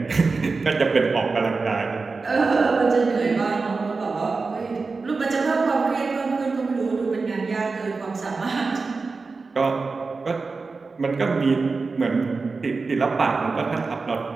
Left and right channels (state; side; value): quieter; left; 4.2 dB